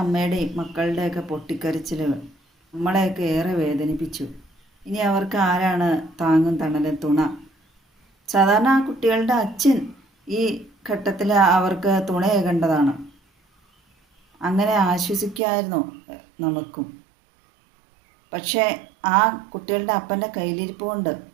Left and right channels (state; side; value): drops out; left; at 15.4 s